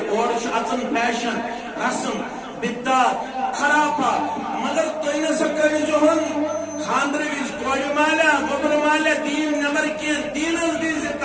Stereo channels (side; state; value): both; identical; correlation 1.00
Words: اور اچن فیشن رسم بدعت خرافات مگر تھی نسا کرزہن خاندر ویچ کوڑ مالا گوبر مالا دین نبر کی دینس دیز